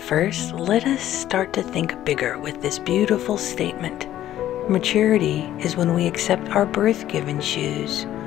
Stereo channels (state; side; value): quieter; right; 12.7 dB